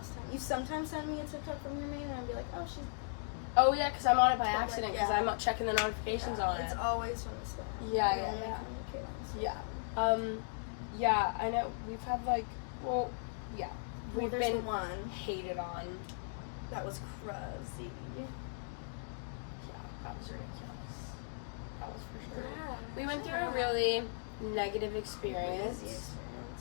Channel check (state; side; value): silent; right; digital silence